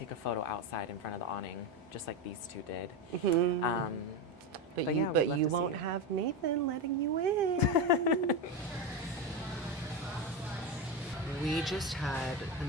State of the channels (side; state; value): both; normal; correlation 0.15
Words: a photo outside in front of the awning, just like these two did. But yeah, we'd love you to see won't you. have Nathan letting you in. We just had the